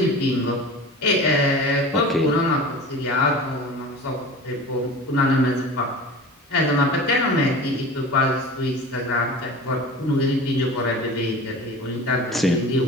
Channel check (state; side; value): normal; both; correlation 0.35